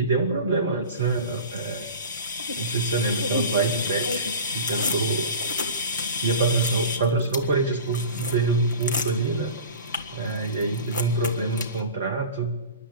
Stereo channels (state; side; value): inverted; both; correlation -0.35